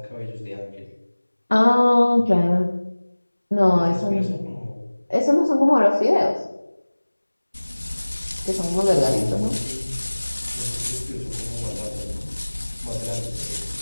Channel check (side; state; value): both; inverted; correlation -1.00